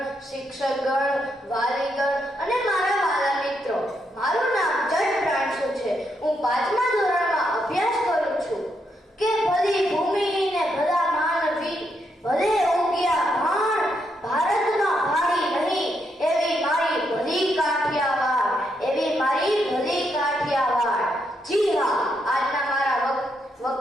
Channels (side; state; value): both; normal; correlation 0.79